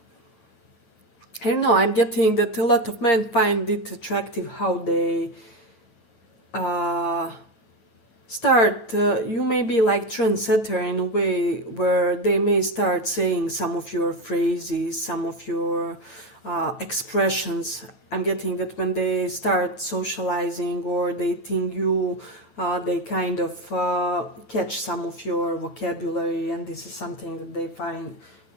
I don't know, I'm getting that a lot of men find it attractive how they start, you may be like trendsetter in a way where they may start saying some of your phrases, some of your expressions. I'm getting that when they start socializing or dating you, they kind of catch some of your vocabulary, and this is something that they find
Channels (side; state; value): right; late; 9.2 ms